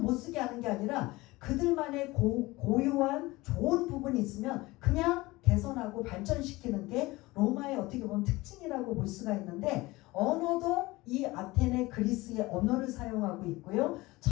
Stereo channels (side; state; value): right; quieter; 20.7 dB